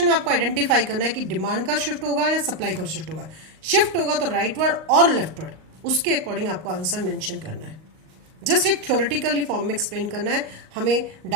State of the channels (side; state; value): left; late; 38 ms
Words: में आपको आइडेंटिफाई करना है कि डिमांड का शिफ्ट होगा या सप्लाई का शिफ्ट होगा. शिफ्ट होगा तो राइटवर्ड और लेफ्टवर्ड, उसके अकॉर्डिंग आपको आंसर मेंशन करना है. जस्ट एक थ्योरेटिकली फॉर्म में एक्सप्लेन करना है. हमें